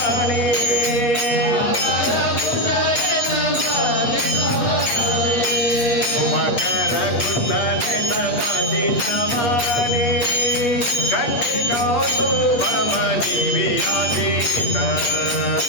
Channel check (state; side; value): late; right; 8.4 ms